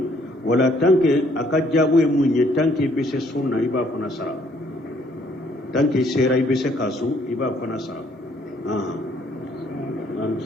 wala tanke aka jabu e munye tanke be se sunna iba fana sara tanke sera ibe se kasu iba fana sara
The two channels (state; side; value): normal; both; correlation 0.65